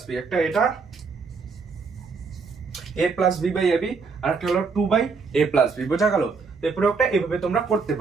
b, একটা এটা a plus b by ab আর একটা হলো 2 বাই a প্লাস b। বোঝা গেল? তো এই প্রয়োগটা এইভাবে তোমরা করতে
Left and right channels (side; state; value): left; quieter; 4.8 dB